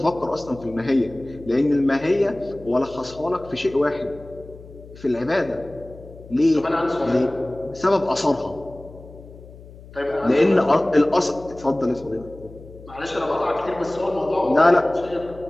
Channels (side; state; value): left; noise; hum, 19 dB below the sound